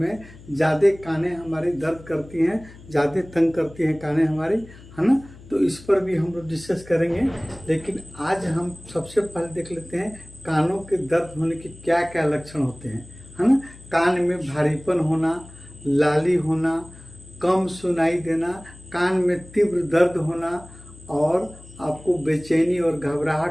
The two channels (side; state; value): left; noise; hum, 20 dB below the sound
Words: ज़्यादा कानें हमारी दर्द करती हैं, ज़्यादा तंग करती हैं कानें हमारी, है ना। तो इस पर भी हम लोग डिस्कस करेंगे। लेकिन आज हम सबसे पहले देख लेते हैं कानों के दर्द होने के क्या क्या लक्षण होते हैं, है ना। कान में भारीपन होना, लाली होना, कम सुनाई देना, कान में तीव्र दर्द होना और आपको बेचैनी और